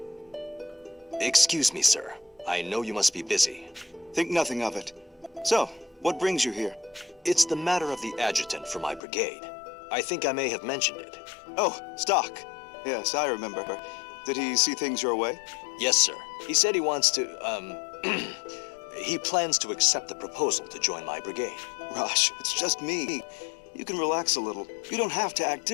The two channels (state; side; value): drops out; right; at 9.0 s